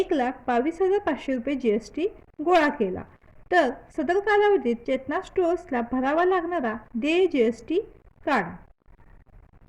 रुपये जीएसटी गोळा केला. तर सदर कालावधीत चेतना स्टोर्सला भरावा लागणारा देय जीएसटी काढा.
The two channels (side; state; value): both; identical; correlation 1.00